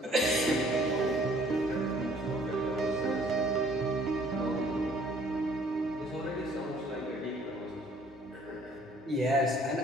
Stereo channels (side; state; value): both; normal; correlation 0.58